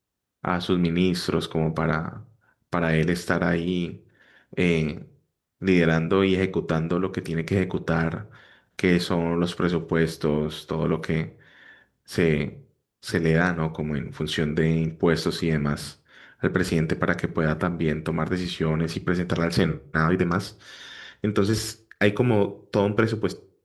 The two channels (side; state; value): both; identical; correlation 1.00